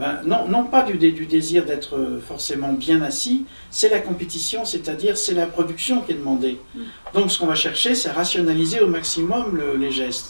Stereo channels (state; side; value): inverted; both; correlation -1.00